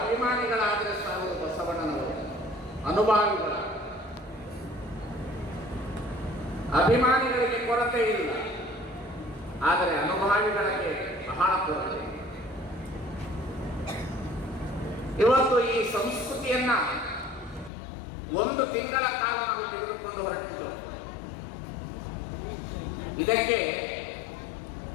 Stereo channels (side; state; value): right; drops out; at 17.7 s